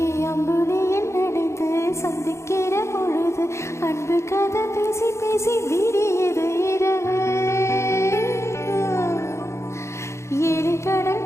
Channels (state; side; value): late; right; 0.13 ms